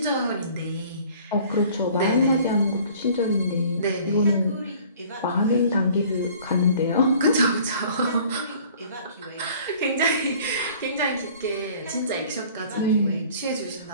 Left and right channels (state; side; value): inverted; both; correlation -0.51